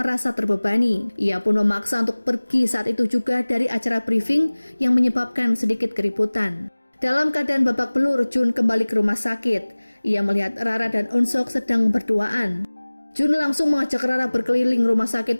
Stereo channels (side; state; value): both; inverted; correlation -1.00